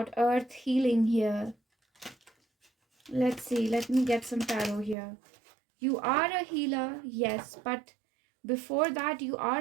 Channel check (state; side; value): drops out; left; at 5.0 s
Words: earth healing here. Let's see, let me get some tarot here. You are a healer, yes, but before that, you are